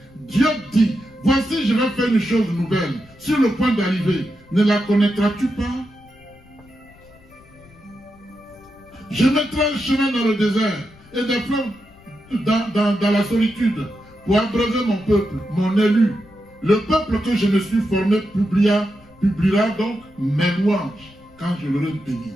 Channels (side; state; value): left; noise; rumble, 26 dB below the sound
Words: Dieu dit, voici je vais faire une chose nouvelle. Sur le point d'arriver, ne la connaîtras-tu pas? Je mettrai un chemin dans le désert et des fleuves dans la solitude pour abreuver mon peuple, mon élu. Le peuple que je me suis formé publiera donc mes louanges quand je l'aurai béni.